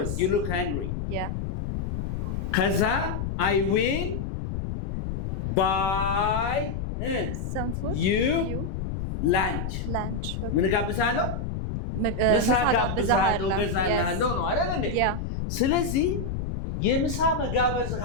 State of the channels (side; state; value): left; noise; rumble, 4 dB below the sound